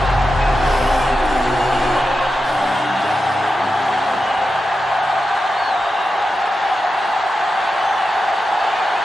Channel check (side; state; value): both; normal; correlation 0.90